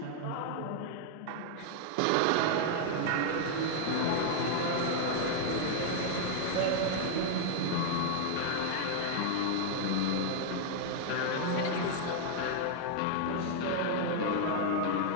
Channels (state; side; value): different; both; correlation 0.00